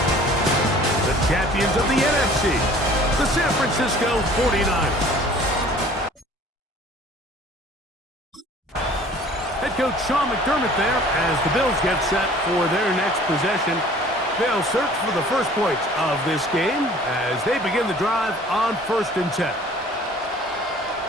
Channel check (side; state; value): both; normal; correlation 0.50